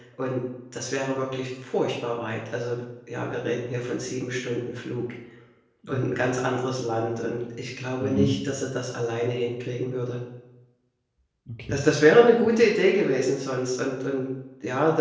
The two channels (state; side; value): identical; both; correlation 1.00